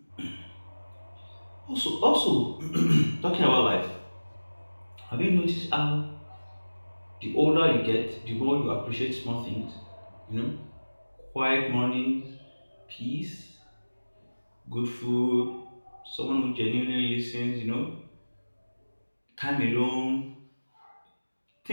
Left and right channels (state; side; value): inverted; both; correlation -1.00